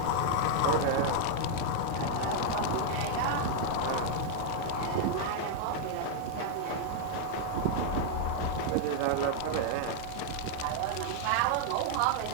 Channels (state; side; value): different; both; correlation 0.00